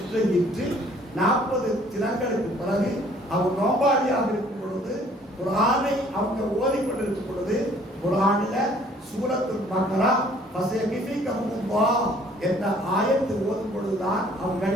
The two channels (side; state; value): both; normal; correlation 0.58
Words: 40 தினங்களுக்கு பிறகு அவர் நோபாளியாக இருக்கும் பொழுது குர்ஆனை அவங்க ஓதிக்கொண்டிருக்கும் பொழுது குர்ஆனில சூரத்துல் பக்ரா ஃபஸயகிஃபிகஹுல்லாஹ் என்ற ஆயத்து ஓதும் பொழுதுதான்